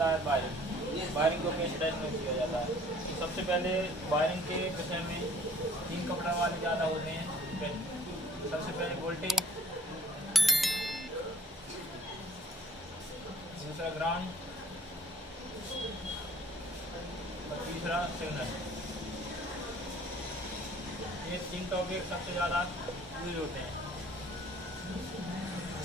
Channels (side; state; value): both; normal; correlation 0.54